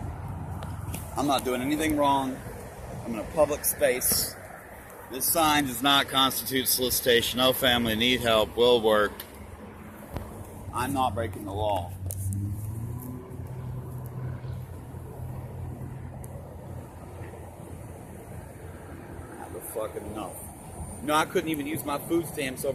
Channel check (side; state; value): both; identical; correlation 1.00